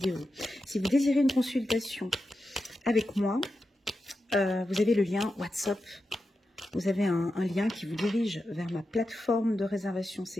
Si vous désirez une consultation avec moi, vous avez le lien WhatsApp. Vous avez un lien qui vous dirige vers ma plateforme de réservation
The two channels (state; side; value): normal; both; correlation 0.89